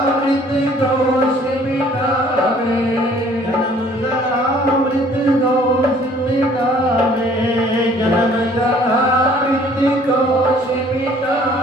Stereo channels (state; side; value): normal; both; correlation 0.56